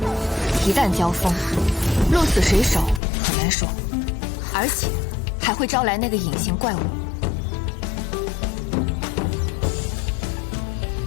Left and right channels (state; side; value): drops out; right; at 3.0 s